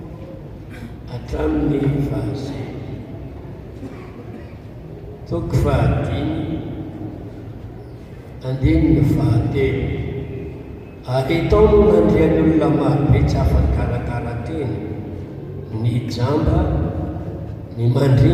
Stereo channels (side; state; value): both; identical; correlation 1.00